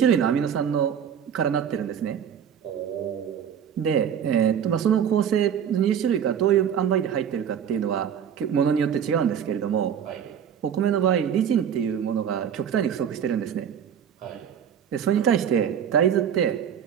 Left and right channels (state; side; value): quieter; left; 8.5 dB